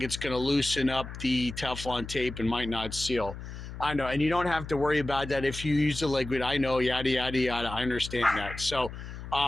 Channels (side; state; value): left; noise; hum, 10 dB below the sound